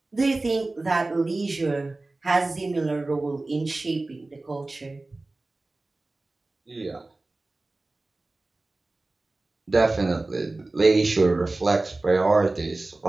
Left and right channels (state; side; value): quieter; left; 3.1 dB